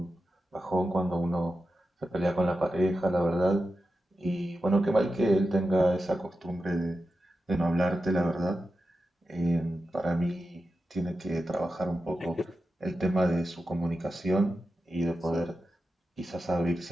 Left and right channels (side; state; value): both; normal; correlation 0.91